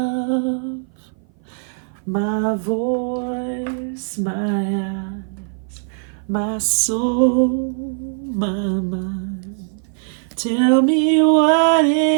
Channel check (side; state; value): left; silent; 57 dB below the other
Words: my voice, my eyes, my soul, my mind. Tell me what